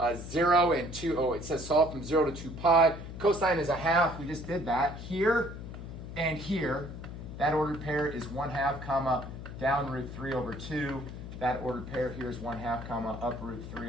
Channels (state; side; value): noise; left; hum, 10 dB below the sound